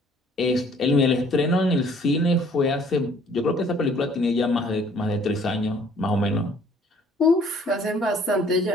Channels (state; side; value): normal; both; correlation 0.58